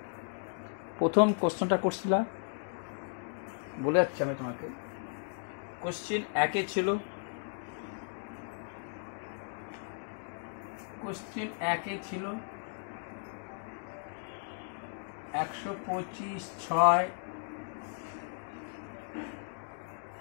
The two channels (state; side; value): silent; right; digital silence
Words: প্রথম কোশ্চেনটা করছিলাম, বলে যাচ্ছি আমি তোমাকে। কোশ্চেন 1-এ ছিল, কোশ্চেন 1-এ ছিল 125/6